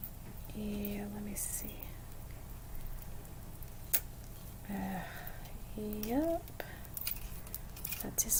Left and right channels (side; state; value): both; identical; correlation 1.00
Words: Yeah, let me see. Yep. That